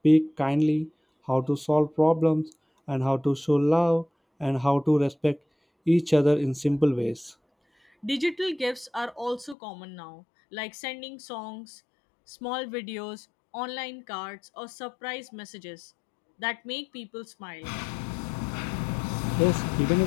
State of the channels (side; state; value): right; drops out; at 9.6 s